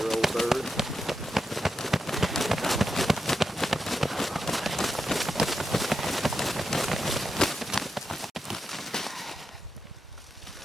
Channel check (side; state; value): both; normal; correlation 0.87